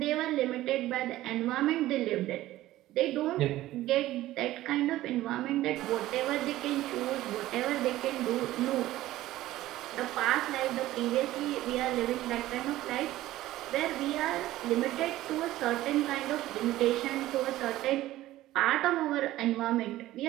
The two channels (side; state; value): left; quieter; 15.6 dB